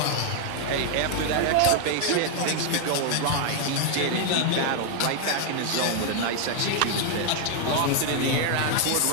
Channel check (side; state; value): both; different; correlation 0.00